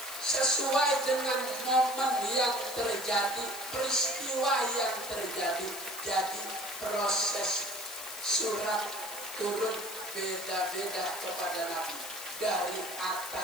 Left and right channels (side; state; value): left; noise; hiss, 12 dB below the sound